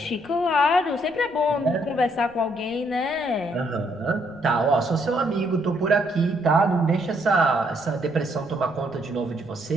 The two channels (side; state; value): left; noise; rumble, 29 dB below the sound